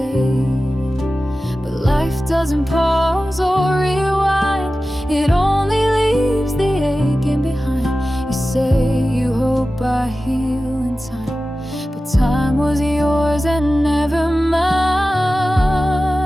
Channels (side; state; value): both; normal; correlation 0.95